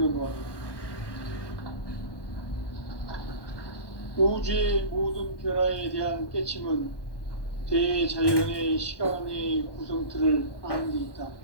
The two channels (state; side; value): late; right; 1.2 ms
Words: 우주의 모든 변화에 대한 깨침은 대자연의 시간의 구성틀을 아는 데 있다.